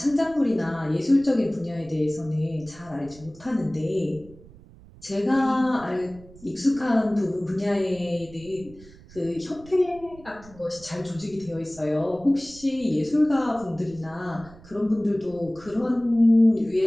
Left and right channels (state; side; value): noise; right; rumble, 21 dB below the sound